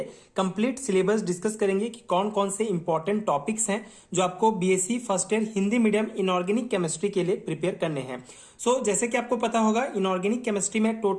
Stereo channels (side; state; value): both; identical; correlation 1.00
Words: कंप्लीट सिलेबस डिस्कस करेंगे कि कौन कौन से इंपॉर्टेंट टॉपिक्स हैं जो आपको BSc first year Hindi medium inorganic chemistry के लिए प्रिपेयर करने हैं। जैसे कि आपको पता होगा, इनऑर्गेनिक केमिस्ट्री में